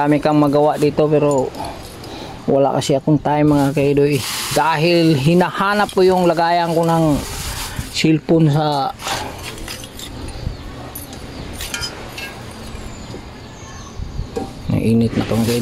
kang magawa dito pero wala kasi akong time mga kaidoy. Dahil hinahanap ko yung lagayan ko ng cellphone sa init na itong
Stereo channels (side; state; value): both; identical; correlation 1.00